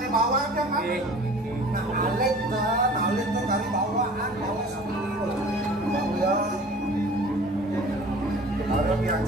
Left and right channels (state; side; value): normal; both; correlation 0.45